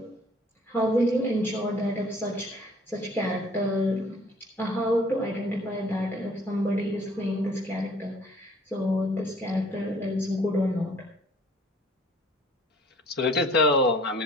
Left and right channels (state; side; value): normal; both; correlation 0.55